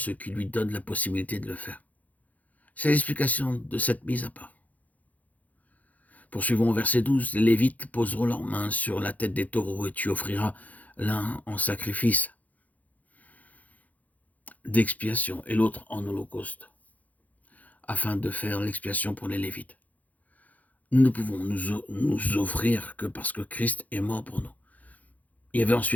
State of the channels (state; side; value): late; right; 0.077 ms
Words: qui lui donnent la possibilité de le faire. C'est l'explication de cette mise à part. Poursuivons au verset 12. Les Lévites poseront leurs mains sur la tête des taureaux et tu offriras l'un en sacrifice d'expiation et l'autre en holocauste, afin de faire l'expiation pour les Lévites. Nous ne pouvons nous offrir que parce que Christ est mort pour nous. Il y avait